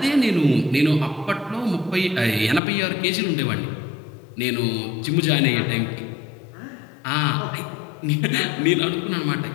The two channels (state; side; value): drops out; right; at 2.6 s